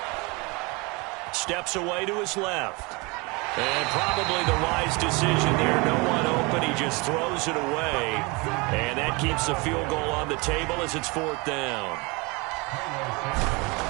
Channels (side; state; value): left; quieter; 27.3 dB